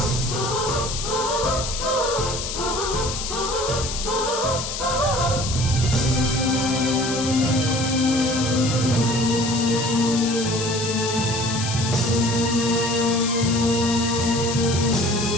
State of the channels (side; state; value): left; noise; hiss, 5 dB below the sound